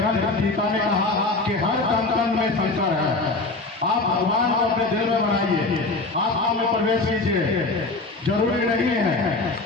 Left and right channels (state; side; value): quieter; right; 3.4 dB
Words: गीता ने कहा कि हर कण में शंकर है। आप भगवान को अपने दिल में बनाइए, आत्मा में प्रवेश कीजिए। जरूरी नहीं है